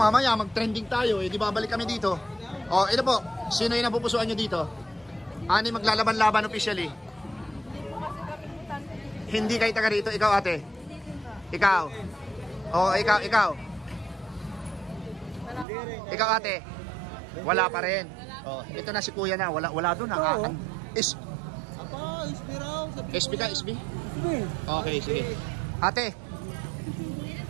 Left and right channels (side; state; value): left; drops out; at 15.7 s